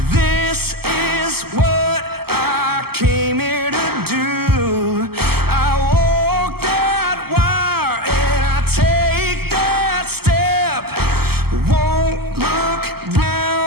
This is what I came here to do. I walk that wire and I take that step. Won't look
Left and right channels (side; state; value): left; late; 0.96 ms